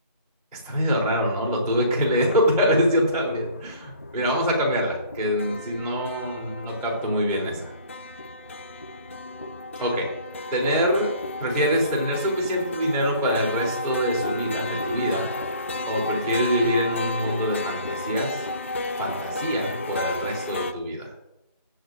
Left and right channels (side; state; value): both; inverted; correlation -0.51